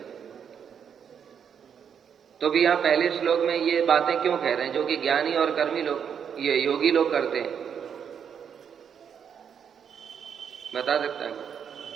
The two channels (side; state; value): left; quieter; 7.7 dB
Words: तो भी यहां पहले श्लोक में ये बातें क्यों कह रहे हैं, जो कि ज्ञानी और कर्मी लोग, ये योगी लोग करते हैं? बता सकता है?